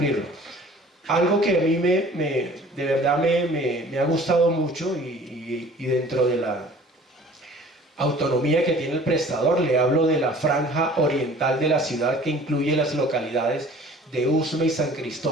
Algo que a mí de verdad me ha gustado mucho y dentro de la autonomía que tiene el prestador, le hablo de la franja oriental de la ciudad que incluye las localidades de Usme y San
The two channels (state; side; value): normal; both; correlation 0.49